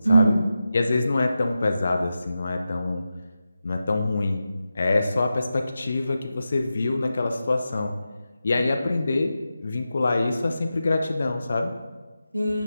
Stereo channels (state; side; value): inverted; both; correlation -0.91